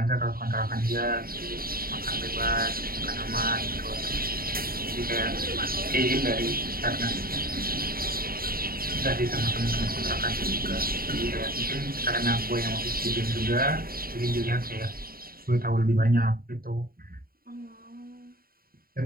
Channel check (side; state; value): left; late; 0.43 ms